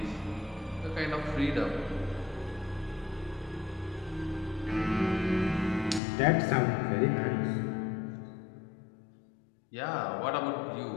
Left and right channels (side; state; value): right; drops out; at 6.0 s